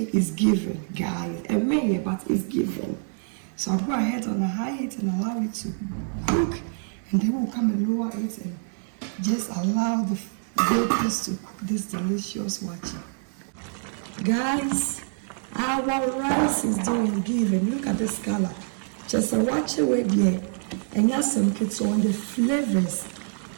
is given, guys. A minute, but it's given. So I'll go ahead on a high heat and allow it to cook, and then we'll come and lower it and just allow the vapors to cook this delicious waakye. Guys, our rice is doing given. Look at this color. Just a waakye with here, and yes, some kids on the flavors.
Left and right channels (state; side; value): silent; left; 60 dB below the other